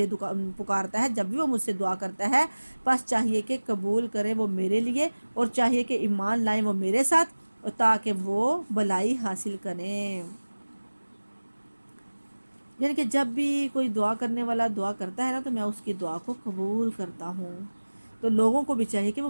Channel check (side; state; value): both; inverted; correlation -1.00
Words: پکارتا ہے، جب بھی وہ مجھ سے دعا کرتا ہے، پس چاہیے کہ قبول کرے وہ میرے لیے، اور چاہیے کہ ایمان لائیں وہ میرے ساتھ، تاکہ وہ بھلائی حاصل کریں۔ یعنی کہ جب بھی کوئی دعا کرنے والا دعا کرتا ہے نا تو میں اس کی دعا کو قبول کرتا ہوں۔ تو لوگوں کو بھی چاہیے کہ وہ